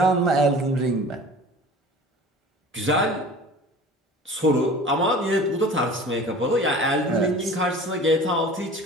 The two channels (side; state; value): both; normal; correlation 0.42